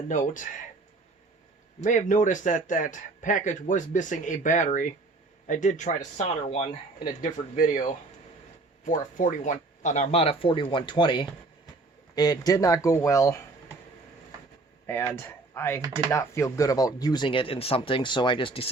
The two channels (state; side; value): quieter; left; 3.3 dB